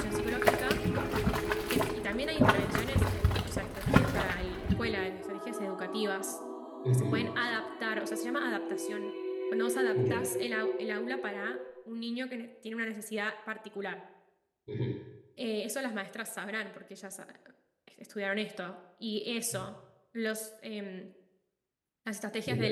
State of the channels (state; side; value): identical; both; correlation 1.00